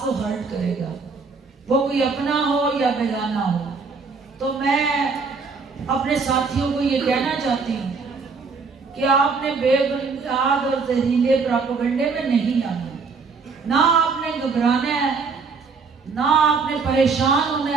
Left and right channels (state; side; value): quieter; left; 4.8 dB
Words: को हर्ट करेगा, वो कोई अपना हो या बेगाना हो। तो मैं अपने साथियों को ये कहना चाहती हूँ कि आपने बेबुनियाद और जहरीले प्रोपेगेंडे में नहीं आना, ना आपने घबराना है, ना आपने परेशान होना